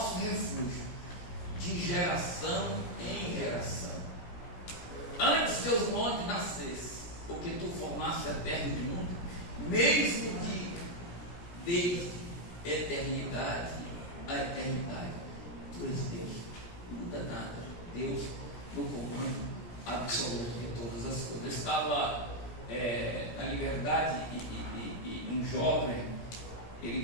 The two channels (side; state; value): right; late; 17 ms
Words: refúgio, de geração em geração. Antes que os montes nascessem, porque tu formaste a terra e o mundo, mesmo desde eternidade a eternidade. Tu és Deus, não muda nada. Deus no comando absoluto de todas as coisas. Eu estava na Liberdade e um jovem, ele